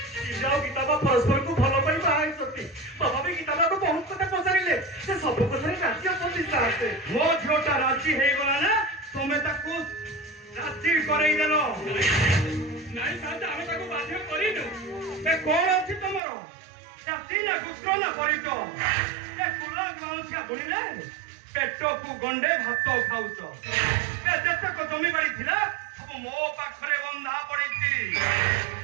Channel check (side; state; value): left; drops out; at 16.2 s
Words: परस्पर को भल पाई बाई सती बाबा भी गीता को बहुत कथा पचारिले से सब कथा राजी असती साथे मो झोटा राजी हे गला ना तमे ताकू राजी करई देलो नाही साथे हमें ताकू बाध्य करिनु ए कोन अछि तमरो जाति ना गुस्त्र ना परितो ए कुला ग्रामसिया बोलिले पेटो को गंडे भात खाउचो ए जेते को जमी बाड़ी थिला सब मो पाखरे बंधा पड़ीची